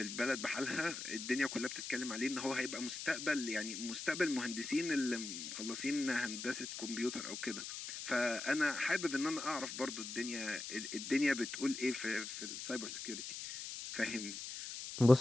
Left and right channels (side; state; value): left; noise; hiss, 7 dB below the sound